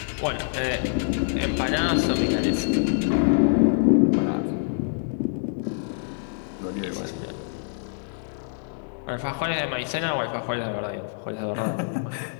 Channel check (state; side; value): silent; right; digital silence